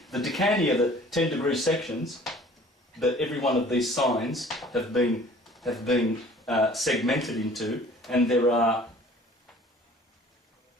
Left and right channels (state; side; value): normal; both; correlation 0.50